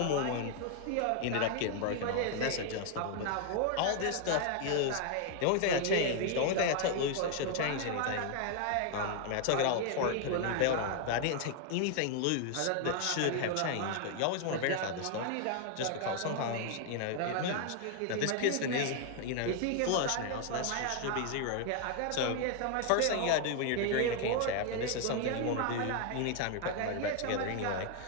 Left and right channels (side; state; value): both; different; correlation 0.00